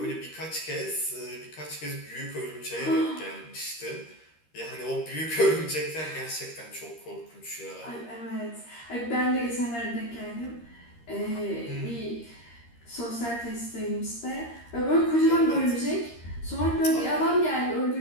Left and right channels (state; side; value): late; right; 13 ms